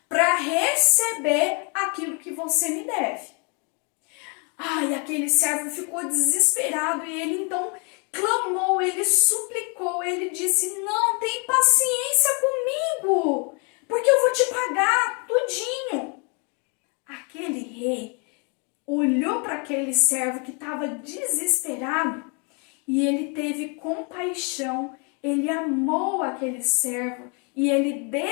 para receber aquilo que você me deve. Ai, aquele servo ficou desesperado e ele então clamou, ele suplicou, ele disse: não, tem paciência comigo, porque eu vou te pagar tudinho. Aquele rei olhou para aquele servo que estava desesperado e ele teve compaixão, ele amou aquele servo e ele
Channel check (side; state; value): right; quieter; 35.3 dB